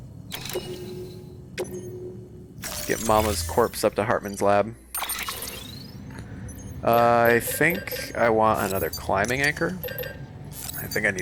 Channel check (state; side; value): identical; both; correlation 1.00